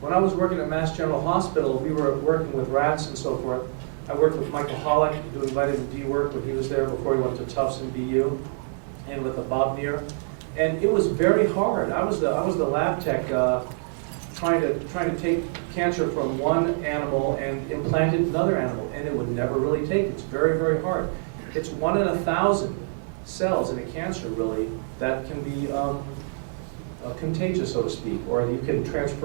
When I was working at Mass General Hospital, we were working with rats and so forth. I worked with Michael Hollick doing vitamin D work when he was there before he went to Tufts and BU, and with Bob Neer. And it was very hard. I was the lab tech trying to take cancer from one animal and implant it in another animal, and it would never really take. It's very, very hard. It's 1 in 1,000 cells in a cancer, really, that can be contagious, so to speak, or you can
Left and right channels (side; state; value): left; silent; 61 dB below the other